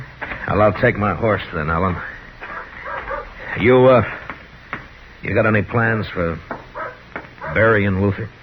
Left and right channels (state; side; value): identical; both; correlation 1.00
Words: Well, I'll take my horse then, Ellen. You got any plans for burying Luther?